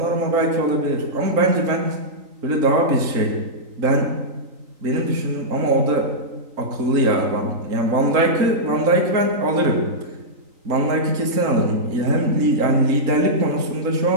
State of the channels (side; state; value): left; late; 3.8 ms